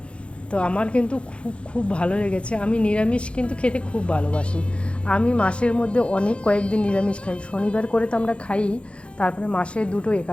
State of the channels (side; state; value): right; late; 0.059 ms